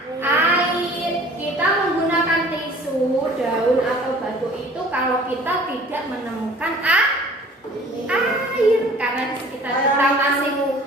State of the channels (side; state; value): both; normal; correlation 0.49